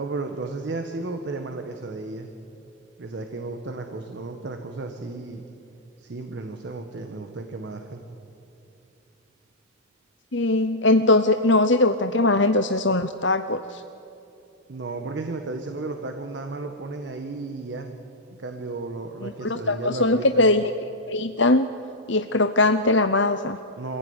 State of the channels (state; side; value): normal; both; correlation -0.08